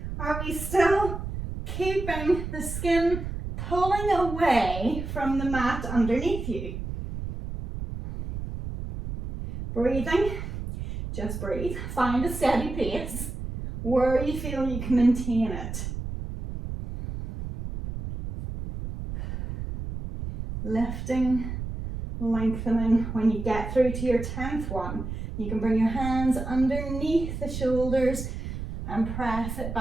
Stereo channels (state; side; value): noise; right; rumble, 6 dB below the sound